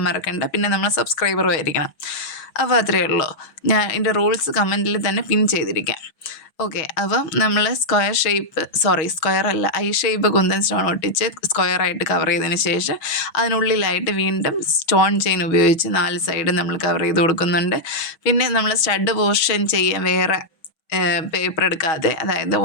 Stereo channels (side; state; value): right; late; 6.2 ms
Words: മറക്കണ്ട. പിന്നെ നമ്മൾ സബ്സ്ക്രൈബറും ആയിരിക്കണം. അപ്പോൾ അത്രയേ ഉള്ളൂ. ഞാൻ ഇതിൻ്റെ റൂൾസ് കമൻറ്റിൽ തന്നെ പിൻ ചെയ്തിരിക്കാം. ഓക്കെ, അപ്പം നമ്മൾ സ്ക്വയർ അല്ല ഐ ഷേപ്പ് കുന്തൻ സ്റ്റോൺ ഒട്ടിച്ച് സ്ക്വയറായിട്ട് കവർ ചെയ്തതിന് ശേഷം അതിനുള്ളിലായിട്ട് വീണ്ടും സ്റ്റോൺ ചെയിൻ ഉപയോഗിച്ച് 4 സൈഡ് നമ്മൾ കവർ ചെയ്ത് കൊടുക്കുന്നുണ്ട്. പിന്നെ നമ്മൾ സ്റ്റഡ് പോർഷൻ ചെയ്യാൻ വേറെ പേപ്പർ എടുക്കാതെ, അതായത്